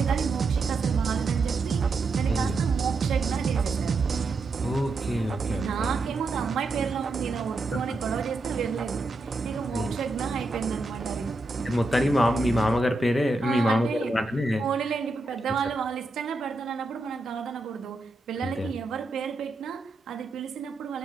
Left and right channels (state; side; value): quieter; left; 3.1 dB